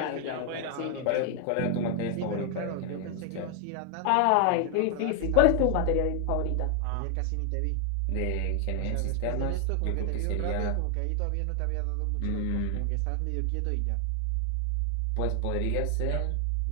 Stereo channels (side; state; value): both; different; correlation 0.00